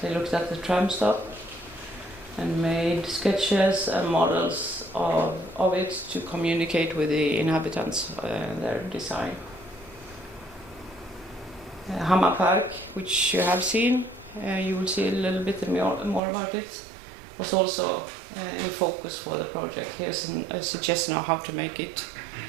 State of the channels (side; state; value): left; drops out; at 16.2 s